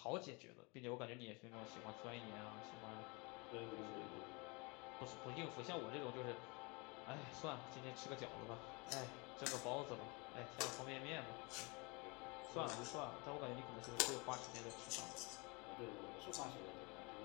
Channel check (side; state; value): right; quieter; 28.9 dB